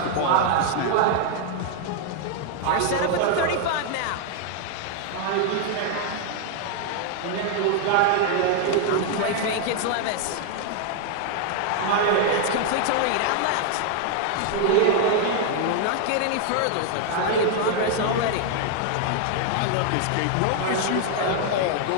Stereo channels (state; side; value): different; both; correlation 0.00